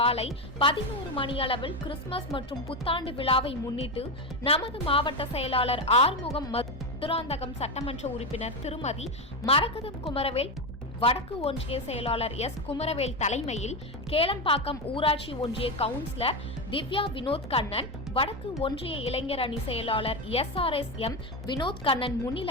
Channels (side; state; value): both; normal; correlation 0.14